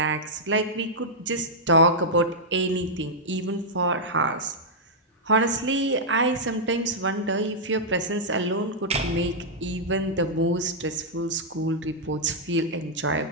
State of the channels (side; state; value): both; normal; correlation -0.07